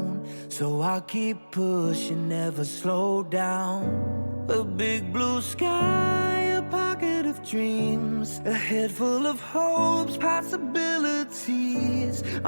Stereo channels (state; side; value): inverted; both; correlation -1.00